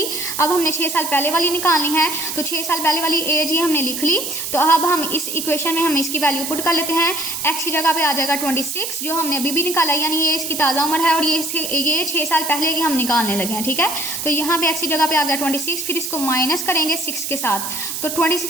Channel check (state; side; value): noise; right; hiss, 5 dB below the sound